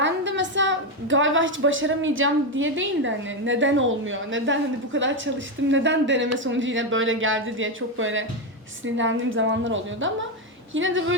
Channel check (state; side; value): normal; both; correlation 0.08